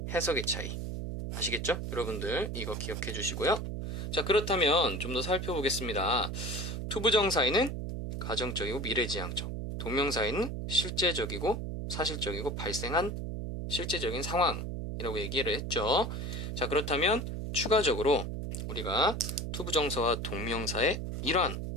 해석의 차이. 아시겠죠? 여러분들 이거 기억해 주시고요. 자, 그렇다면 좀 더 살펴보겠습니다. 투부정사에는 가정적이고 미래지향적, 동명사에는 실제적이고 사실적이고 발생한 실제적인 상황이라고 얘기를 했죠. 자, 그렇다면 추가적으로 우리가 투부정사와 동명사의 이러한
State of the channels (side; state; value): right; noise; hum, 4 dB below the sound